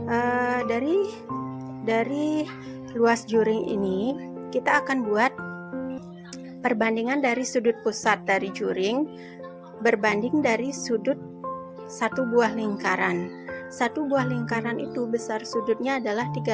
Dari luas juring ini, kita akan buat perbandingan dari sudut pusat dari juring berbanding dari sudut satu buah lingkaran. Satu buah lingkaran itu besar sudutnya adalah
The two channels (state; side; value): identical; both; correlation 1.00